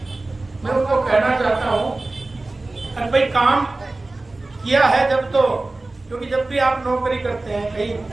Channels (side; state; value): left; quieter; 3.1 dB